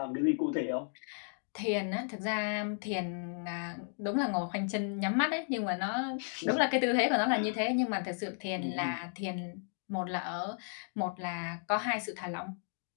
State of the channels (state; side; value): silent; right; 55 dB below the other